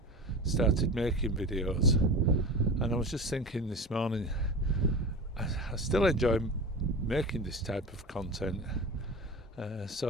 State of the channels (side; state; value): both; normal; correlation 0.31